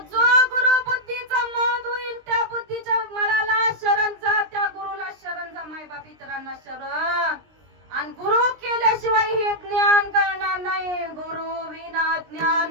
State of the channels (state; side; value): late; left; 19 ms